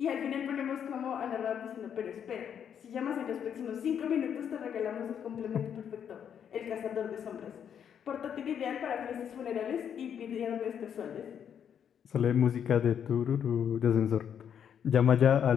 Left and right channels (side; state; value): right; quieter; 8.4 dB